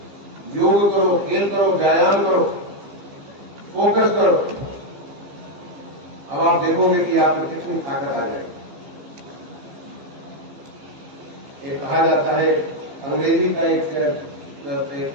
योग करो, खेल करो, व्यायाम करो, फोकस करो। अब आप देखोगे कि आप में कितनी ताकत आ जाएगी। एक कहा जाता है, अंग्रेजी का एक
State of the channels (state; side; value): late; left; 15 ms